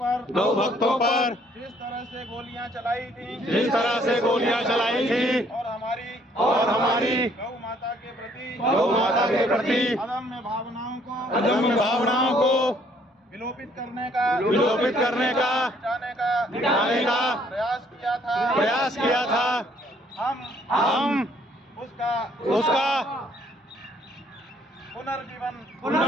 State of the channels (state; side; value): normal; both; correlation 0.64